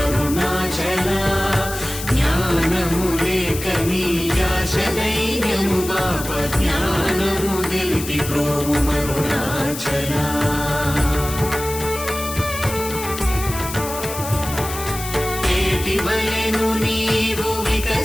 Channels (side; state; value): left; noise; hiss, 9 dB below the sound